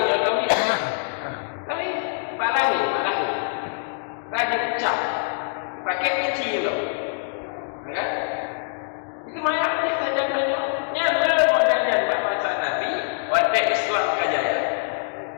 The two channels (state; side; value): silent; right; digital silence